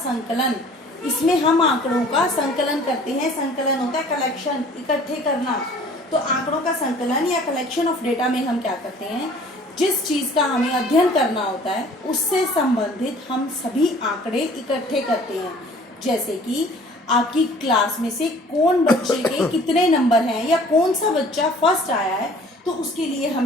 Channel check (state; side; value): normal; both; correlation 0.51